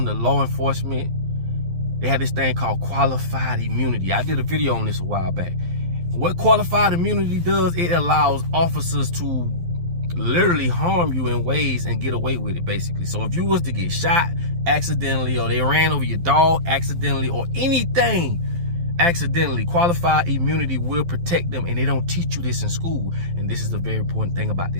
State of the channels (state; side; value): late; left; 12 ms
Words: to law enforcement. They have this thing called qualified immunity. I did a video on this a while back. What qualified immunity does, it allows officers to literally harm you in ways and get away with it, basically. So if you was to get shot accidentally, or they ran over your dog accidentally, or anything accidentally, qualified immunity will protect them, and they don't teach you this in school. And this is the very important thing about